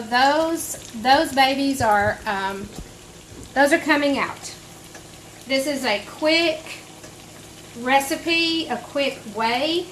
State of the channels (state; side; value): identical; both; correlation 1.00